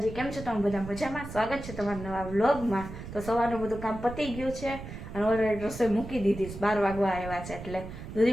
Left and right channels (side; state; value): right; noise; rumble, 11 dB below the sound